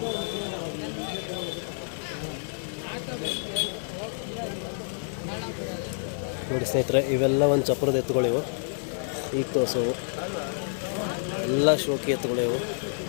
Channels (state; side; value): silent; right; digital silence